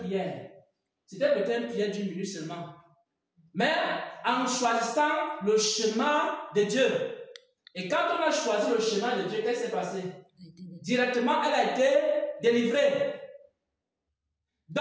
C'était peut-être une prière d'1 minute seulement. Mais en choisissant le chemin de Dieu. Et quand on a choisi le chemin de Dieu, qu'est-ce qui s'est passé? Directement, elle a été délivrée.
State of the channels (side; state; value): both; identical; correlation 1.00